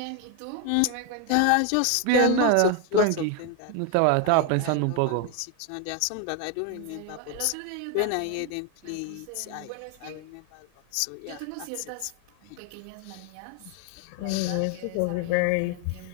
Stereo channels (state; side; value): different; both; correlation 0.01